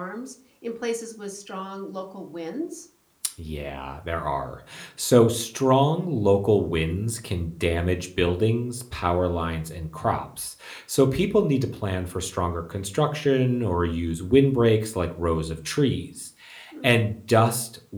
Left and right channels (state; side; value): identical; both; correlation 1.00